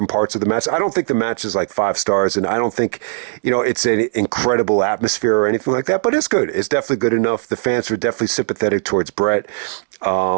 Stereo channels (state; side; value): silent; left; digital silence